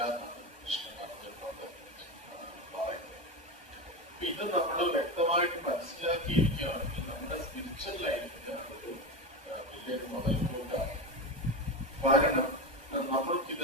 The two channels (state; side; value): late; left; 1.2 ms